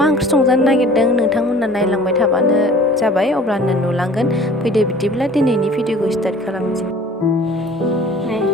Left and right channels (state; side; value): normal; both; correlation 0.48